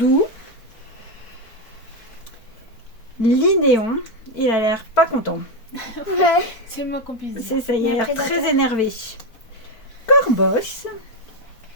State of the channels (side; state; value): right; late; 4.5 ms